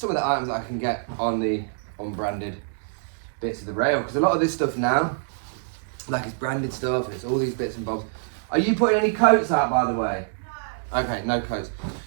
that I can get on the unbranded bits of the rail. Because a lot of this stuff now, like it's branded stuff, and it's all these bits and bobs. Are you putting any coats out, by the way? Okay, no coats.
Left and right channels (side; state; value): left; silent; digital silence